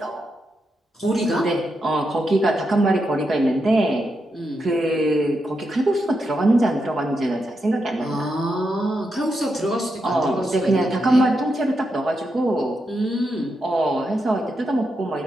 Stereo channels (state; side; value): normal; both; correlation 0.85